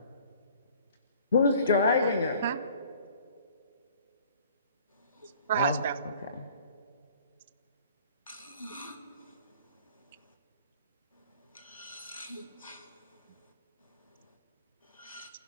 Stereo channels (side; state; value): both; inverted; correlation -0.52